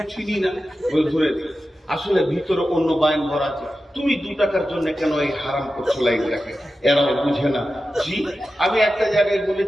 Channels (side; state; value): both; normal; correlation 0.92